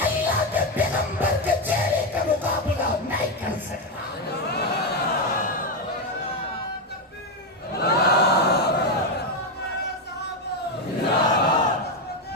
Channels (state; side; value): normal; both; correlation 0.08